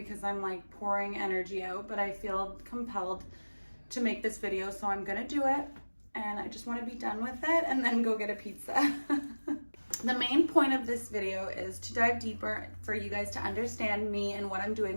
I'm like pouring energy out, but I feel compelled to make this video, so I'm gonna do it, and I just want to be done with it and then go get a pizza. The main point of this video is to dive deeper for you guys to understand me and what I'm doing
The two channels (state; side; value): inverted; both; correlation -1.00